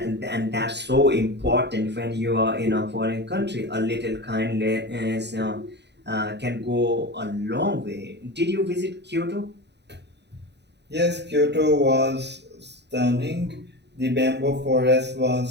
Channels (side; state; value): left; late; 0.50 ms